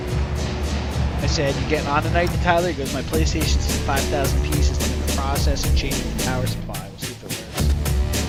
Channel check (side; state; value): both; identical; correlation 1.00